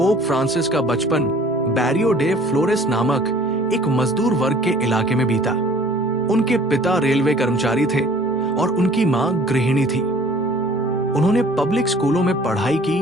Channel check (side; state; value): both; normal; correlation 0.51